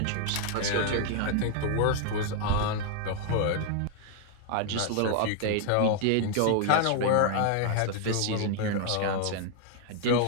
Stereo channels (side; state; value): both; different; correlation 0.00